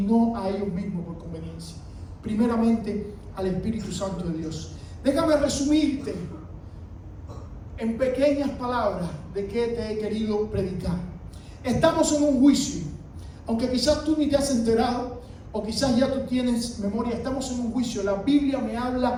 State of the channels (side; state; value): both; identical; correlation 1.00